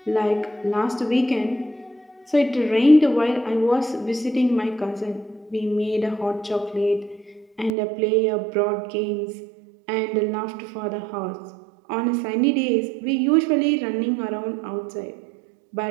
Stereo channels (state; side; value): drops out; left; at 7.7 s